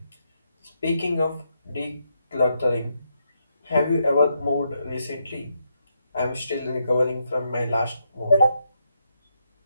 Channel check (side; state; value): both; inverted; correlation -0.80